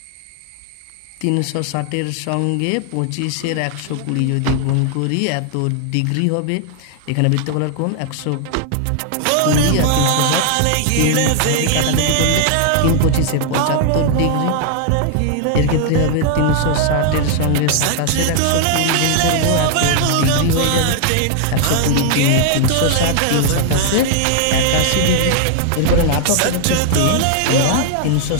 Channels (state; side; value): different; both; correlation 0.00